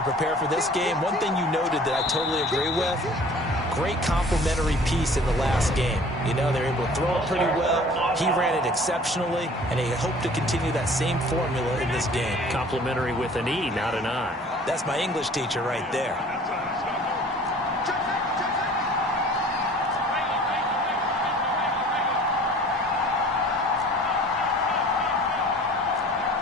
prepare for this game. One thing you noted that I totally agree with, great complementary piece in the last game. You know, they were able to throw it pretty well. He ran it exceptionally, and they hope to continue that same formula in this game. Complimentary with an E, not an I. That's my English teacher right there.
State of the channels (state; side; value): normal; both; correlation 0.48